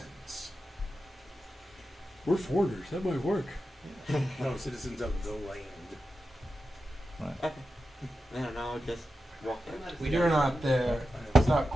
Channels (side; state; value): both; normal; correlation 0.91